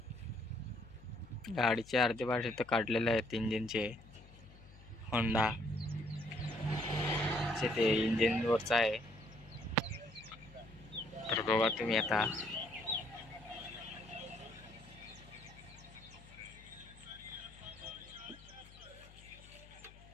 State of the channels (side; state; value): left; noise; hum, 21 dB below the sound